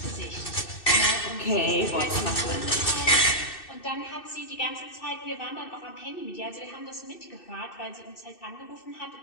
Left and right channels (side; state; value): right; late; 2.6 ms